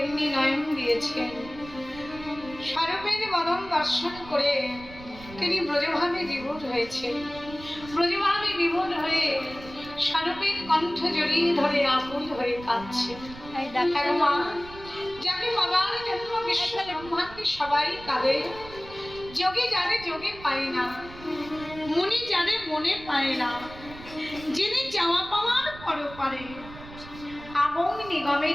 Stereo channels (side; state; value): right; noise; rumble, 16 dB below the sound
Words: নয়ন দিয়েছেন, স্বরূপের বদন দর্শন করে তিনি ব্রজভাবে বিভোর হয়েছেন। ব্রজভাবে বিভোর হয়ে স্বরূপের কণ্ঠ জড়িয়ে ধরে আকুল হয়ে কাঁদছে। মা, যাকে বাবার জন্ম বিশ্ব ব্রহ্মাণ্ডে সবাই কাঁদে, যোগে যারে যোগে পায় না, মুনি যারে মনে পায় না, যিনি চাওয়া পাওয়ার পরপারে আগম